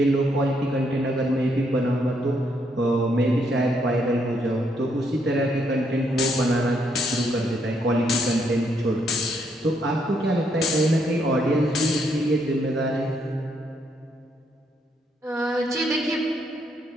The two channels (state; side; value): normal; both; correlation 0.74